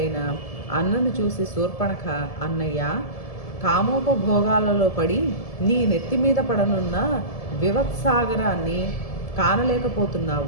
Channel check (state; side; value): late; right; 1.7 ms